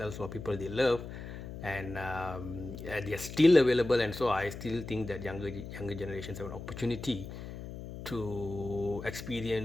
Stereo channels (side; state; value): left; noise; hum, 10 dB below the sound